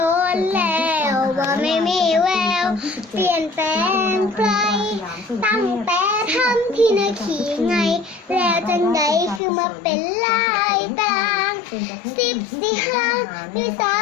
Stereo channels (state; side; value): drops out; right; at 9.4 s